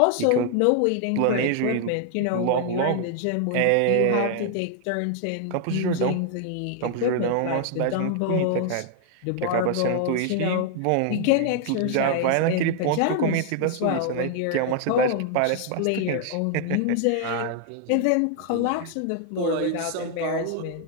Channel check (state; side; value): different; both; correlation 0.00